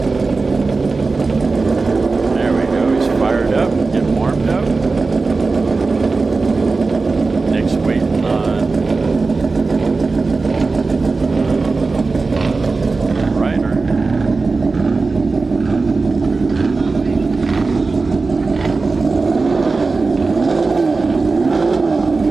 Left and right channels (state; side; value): quieter; left; 3.9 dB